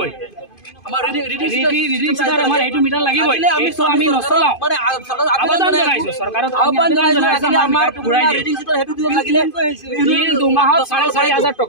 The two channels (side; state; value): right; late; 2.5 ms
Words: আমাৰ ৰিডিং স্টাৰ আমাৰ এইটো মিটাৰ লাগিবই এইটো আমি নচলাও মানে আবেদন জনাইছো চৰকাৰক আহ্বান জনাইছো আমাৰ ৰিডিং স্টাৰ হেতু দিব লাগিলে বিল 2 মাহত 4,500